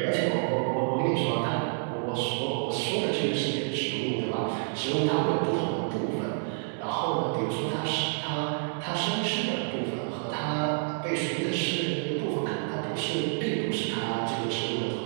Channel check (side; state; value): left; silent; 59 dB below the other